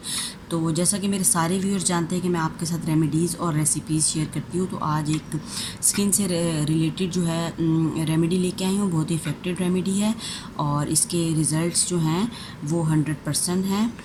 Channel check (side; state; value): both; identical; correlation 1.00